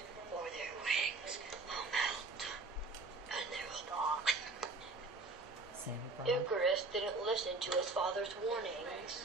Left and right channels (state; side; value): quieter; left; 3.4 dB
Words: or their wings will melt and they will die. Icarus didn't listen to his father's